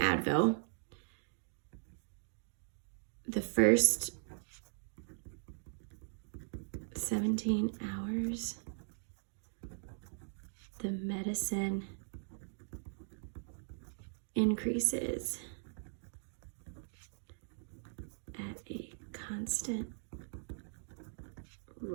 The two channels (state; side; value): silent; left; digital silence